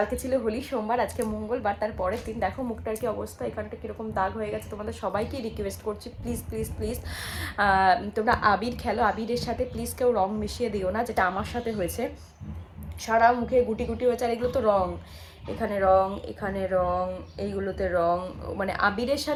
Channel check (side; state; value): both; identical; correlation 1.00